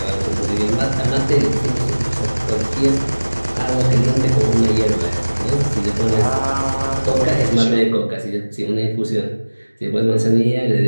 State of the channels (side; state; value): both; inverted; correlation -1.00